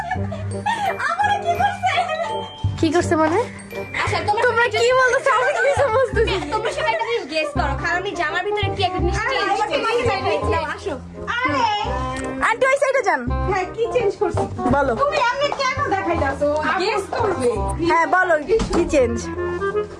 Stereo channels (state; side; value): identical; both; correlation 1.00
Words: কি করছে মানে? আচ্ছা তোমরা কি বলতেছো আমি কিছু বুঝতেছি না। তোমরা সবাই একটা জিনিস গেস করো, খালামণি জামার ভিতরে কি একটা জিনিস আসো। আরে আন্টি ওই সাইডে যান। হ্যাঁ, কি চেঞ্জ করছি বলো। তুমি এমনি কেন দেখাইতাছো? গেস করবে। হ্যাঁ বলো কি চেঞ্জ।